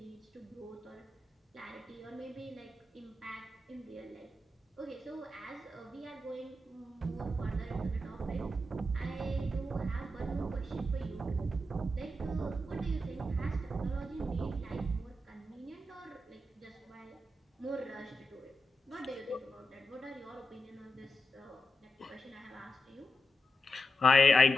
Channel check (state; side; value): normal; both; correlation 0.88